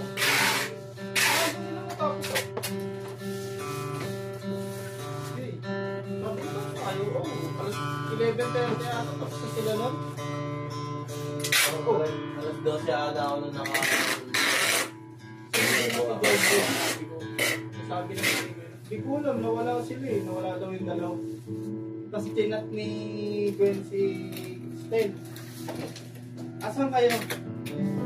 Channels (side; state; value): both; identical; correlation 1.00